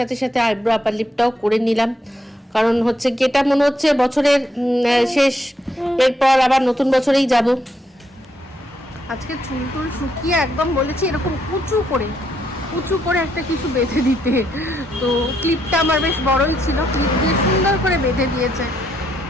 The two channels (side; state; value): both; normal; correlation 0.76